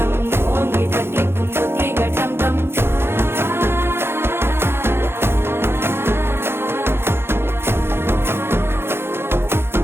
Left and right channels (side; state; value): left; late; 0.11 ms